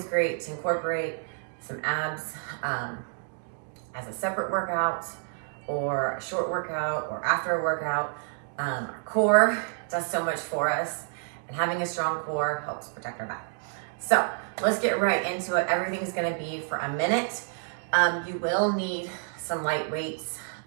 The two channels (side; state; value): left; silent; digital silence